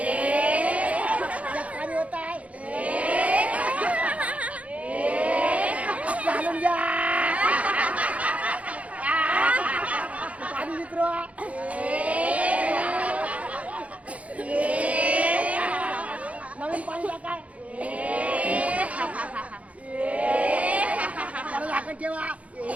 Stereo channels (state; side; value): late; left; 0.066 ms